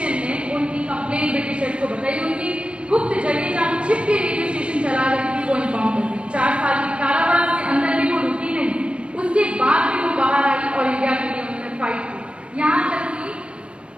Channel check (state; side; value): late; left; 0.059 ms